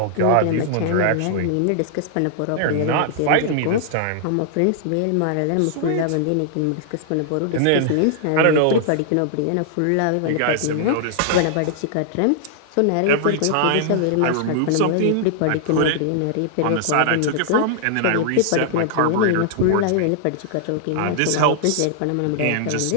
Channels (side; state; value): both; different; correlation -0.01